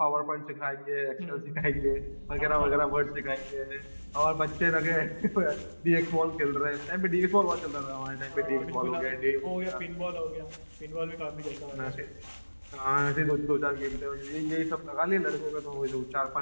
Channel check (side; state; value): both; inverted; correlation -1.00